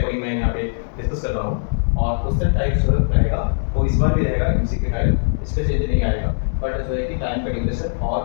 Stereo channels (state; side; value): silent; right; 65 dB below the other